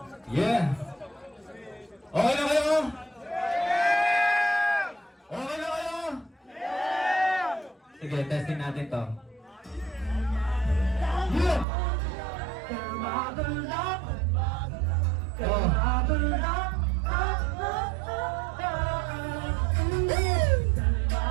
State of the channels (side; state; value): left; drops out; at 11.7 s